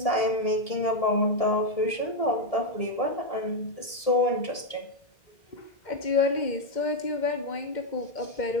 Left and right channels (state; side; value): late; right; 1.8 ms